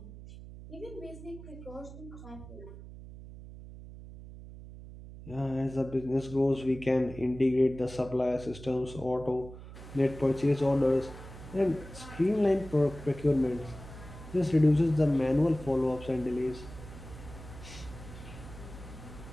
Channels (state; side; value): noise; right; hum, 14 dB below the sound